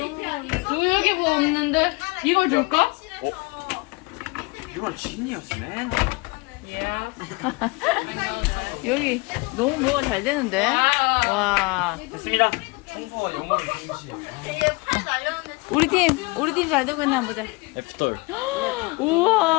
여기 뭐 없는데? 이걸 줄까? You are genius, man. 여기 너무 뭐가 잘 되는데? 와. 됐습니다. 청소와 영어는 동시에. 우리 팀 잘 되고 있나 보자. F-돌.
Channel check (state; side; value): quieter; right; 26.7 dB